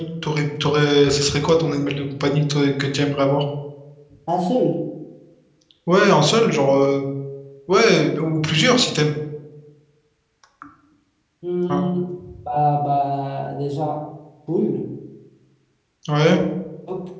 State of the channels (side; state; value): both; identical; correlation 1.00